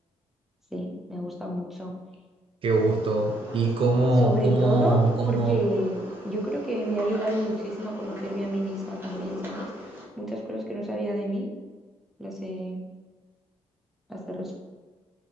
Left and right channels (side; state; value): both; normal; correlation 0.71